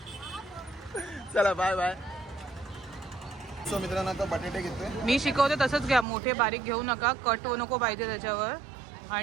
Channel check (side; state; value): left; drops out; at 6.1 s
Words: चला बाय बाय. सो मित्रांनो आता बटाटे घेतोय. मी शिकवते तसंच घ्या. मोठे बारीक घेऊ नका. कट नको पाहिजे त्याच्यावर.